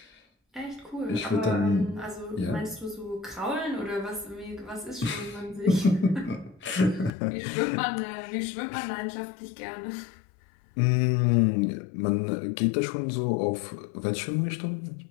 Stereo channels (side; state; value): right; drops out; at 7.1 s